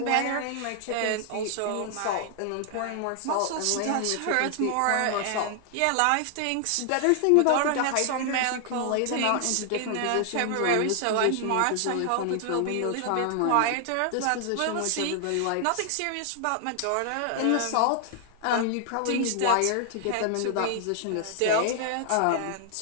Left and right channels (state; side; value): different; both; correlation 0.00